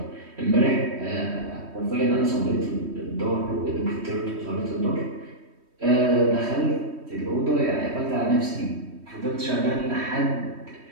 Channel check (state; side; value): late; left; 3.1 ms